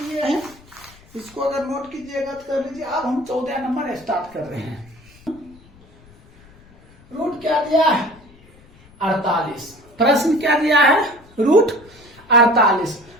हैं। इसको अगर नोट कीजिएगा तो कर लीजिए। अब हम 14 नंबर स्टार्ट कर रहे हैं। रूट क्या दिया है 48, प्रश्न क्या दिया है रूट 48।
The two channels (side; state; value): left; noise; rumble, 26 dB below the sound